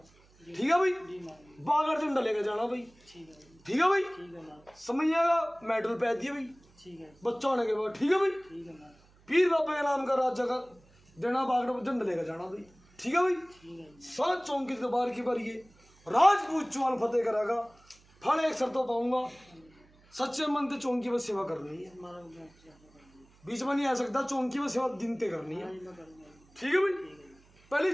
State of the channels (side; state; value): right; noise; hum, 29 dB below the sound